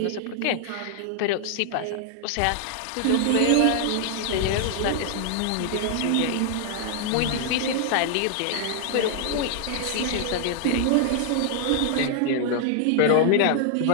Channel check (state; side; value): different; both; correlation -0.01